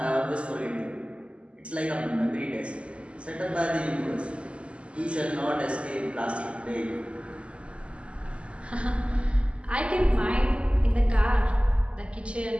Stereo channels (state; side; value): late; left; 0.056 ms